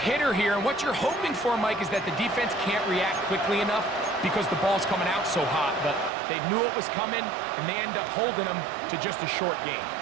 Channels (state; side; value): drops out; left; at 6.1 s